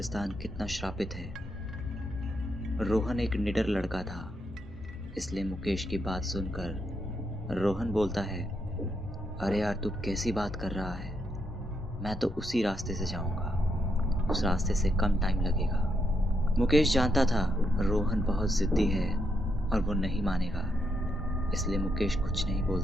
कितना श्रापित है। रोहन एक निडर लड़का था, इसलिए मुकेश की बात सुनकर रोहन बोलता है, अरे यार तू कैसी बात कर रहा है, मैं तो उसी रास्ते से जाऊंगा, उस रास्ते से कम टाइम लगेगा। मुकेश जानता था रोहन बहुत जिद्दी है और वो नहीं मानेगा, इसलिए मुकेश कुछ नहीं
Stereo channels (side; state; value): both; normal; correlation 0.79